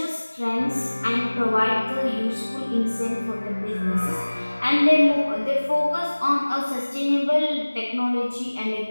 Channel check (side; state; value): both; inverted; correlation -1.00